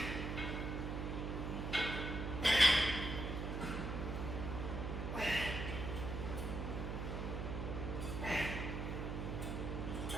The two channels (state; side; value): noise; right; hum, 3 dB below the sound